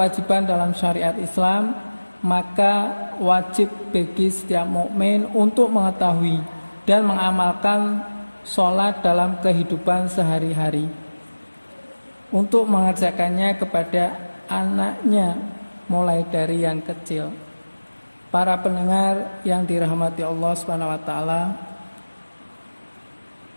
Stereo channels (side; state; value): both; inverted; correlation -1.00